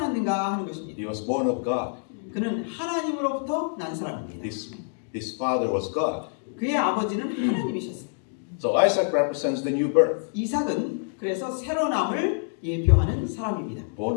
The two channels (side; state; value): right; silent; digital silence